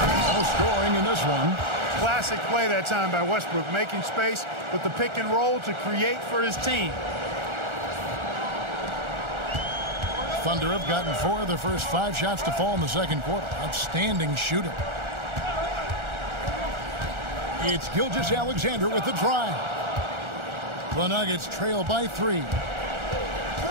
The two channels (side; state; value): left; late; 1.4 ms